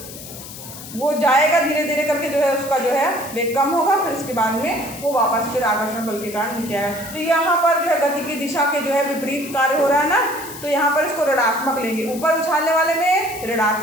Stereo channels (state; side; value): noise; left; hiss, 13 dB below the sound